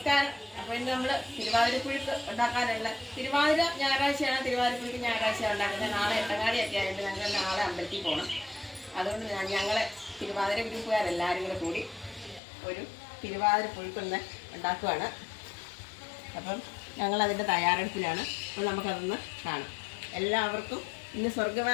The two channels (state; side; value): drops out; right; at 12.4 s